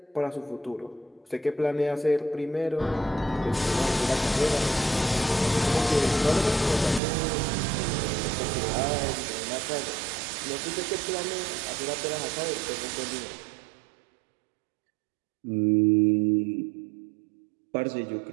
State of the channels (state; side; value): drops out; left; at 7.0 s